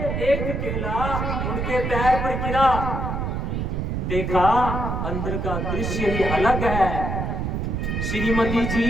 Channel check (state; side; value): noise; right; rumble, 1 dB below the sound